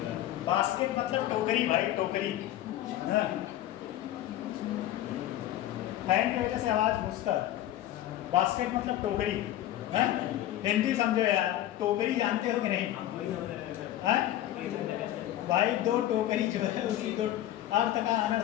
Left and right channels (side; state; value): right; quieter; 13.4 dB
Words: बास्केट मतलब टोकरी भाई, टोकरी। फैन की वजह से आवाज घुसता। बास्केट मतलब टोकरी। हिंदी समझो यार, टोकरी जानते हो कि नहीं? भाई दो टोकरी जो है उसी दो अर्थ का